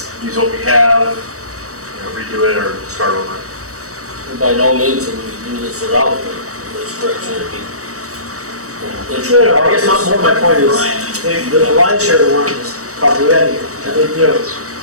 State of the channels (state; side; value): late; left; 0.65 ms